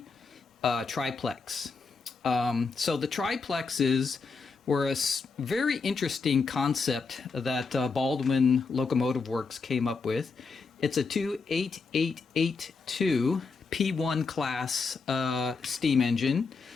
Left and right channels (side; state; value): right; quieter; 4.6 dB